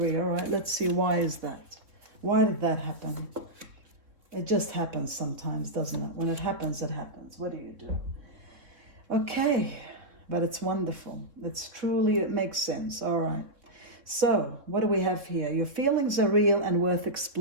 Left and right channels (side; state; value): left; late; 3.5 ms